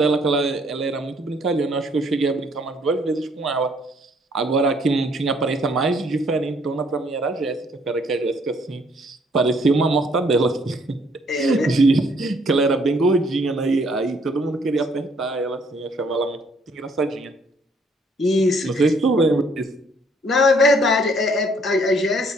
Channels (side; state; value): both; normal; correlation 0.65